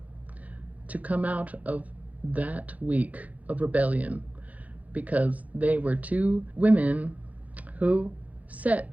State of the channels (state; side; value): late; left; 0.073 ms